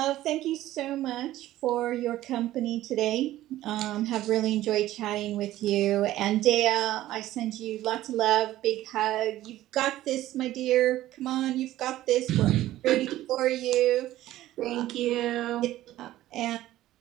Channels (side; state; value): left; quieter; 14.7 dB